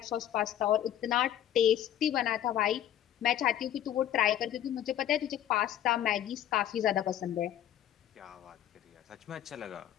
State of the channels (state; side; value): quieter; right; 11.4 dB